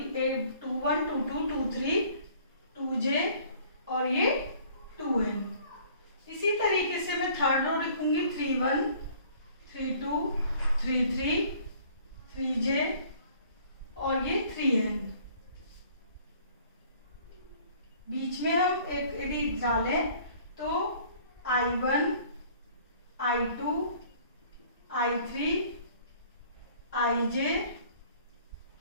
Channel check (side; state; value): both; inverted; correlation -0.55